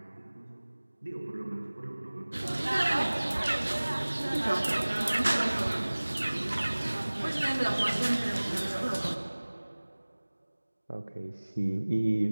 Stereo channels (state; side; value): inverted; both; correlation -1.00